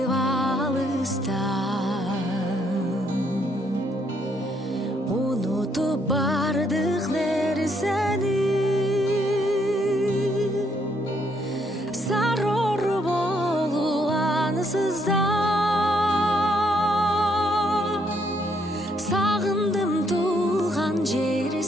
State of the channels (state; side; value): normal; both; correlation 0.72